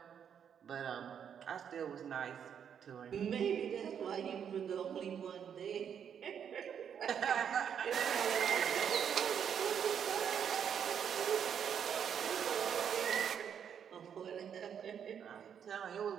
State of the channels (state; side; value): quieter; left; 8.1 dB